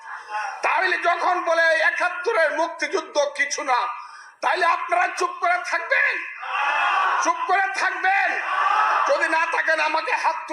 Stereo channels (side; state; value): both; identical; correlation 1.00